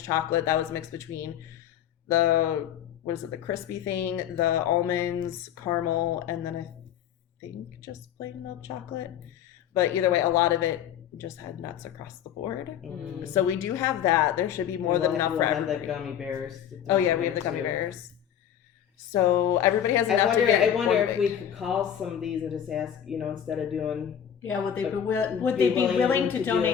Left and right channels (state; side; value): quieter; right; 9.5 dB